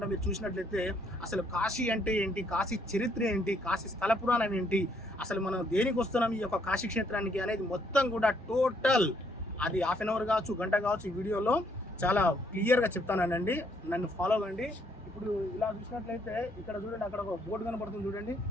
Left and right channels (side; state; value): both; normal; correlation 0.69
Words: మీరు చూసినట్లయితే అసలు కాశీ అంటే ఏంటి, కాశీ చరిత్ర ఏంటి, కాశీ స్థల పురాణం ఏంటి, అసలు మనం దేనికి వస్తున్నాం ఈ యొక్క కాశీ క్షేత్రానికి అనేది మొత్తం కూడా టోటల్ అది హాఫ్ అన్ అవర్ కావచ్చు, గంట కావచ్చు, ఈ వీడియోలో చాలా క్లియర్గా చెప్తానండి. నన్ను ఫాలో అవ్వండి. ఇప్పుడు ఇలా చూసినట్లయితే ఇక్కడ చూడండి, అక్కడ ఒక బోర్డు కనపడుతుంది చూడండి.